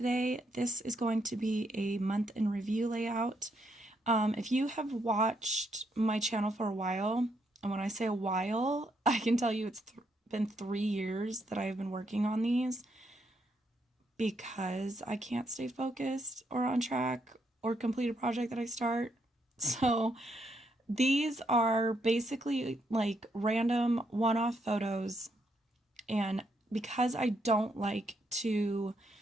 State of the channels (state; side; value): normal; both; correlation 0.76